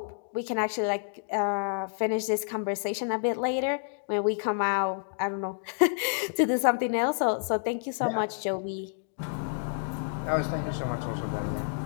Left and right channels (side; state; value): right; silent; digital silence